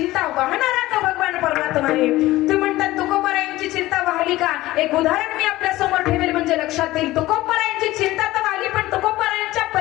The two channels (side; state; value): right; quieter; 17.3 dB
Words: वाहणारा तो भगवान परमात्मा आहे. तुम्ही म्हणतात तुकोबरायांची चिंता वाहली का? एक उदाहरण मी आपल्या समोर ठेवेल म्हणजे लक्षात येईल. तुकोबरायांची चिंता तर वाहली, पण तुकोबरायांच्या